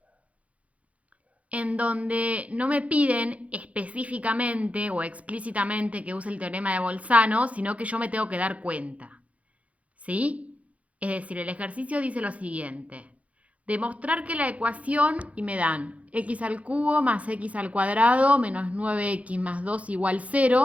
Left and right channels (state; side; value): late; left; 0.065 ms